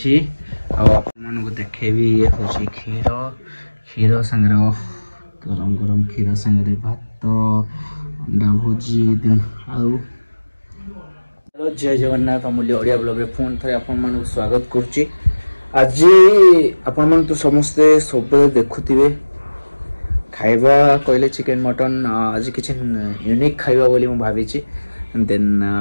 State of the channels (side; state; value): both; inverted; correlation -1.00